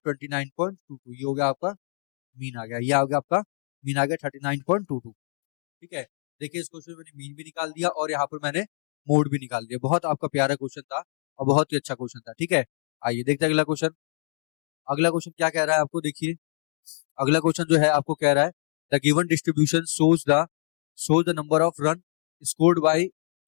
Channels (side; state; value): right; silent; digital silence